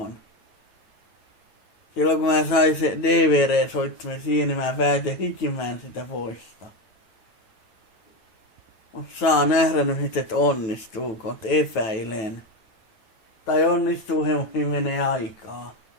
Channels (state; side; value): late; right; 9.0 ms